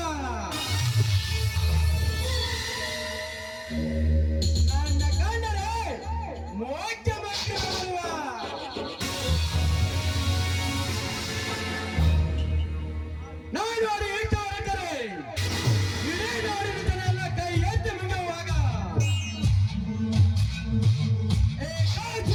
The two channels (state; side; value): identical; both; correlation 1.00